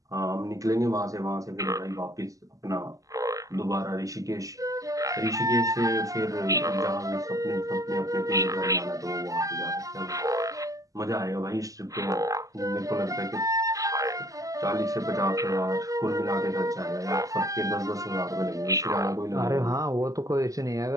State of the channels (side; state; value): left; late; 0.17 ms